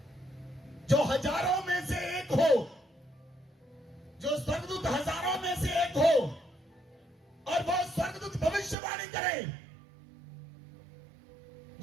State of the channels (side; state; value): left; drops out; at 8.8 s